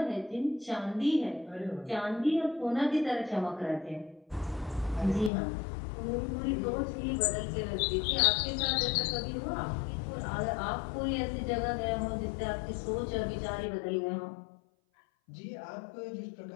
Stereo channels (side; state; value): right; drops out; at 5.3 s